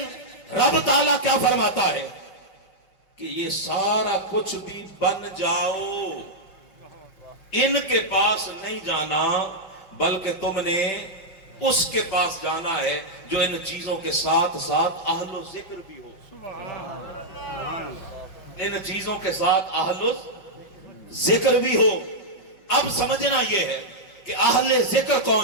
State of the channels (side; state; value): right; late; 5.6 ms